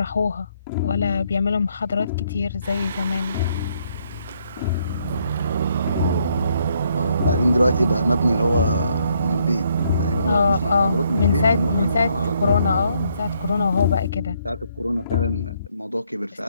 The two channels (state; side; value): inverted; both; correlation -0.71